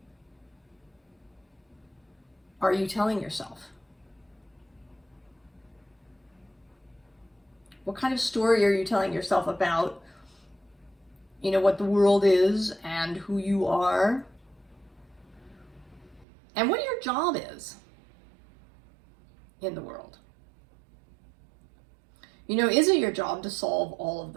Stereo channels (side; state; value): left; drops out; at 16.2 s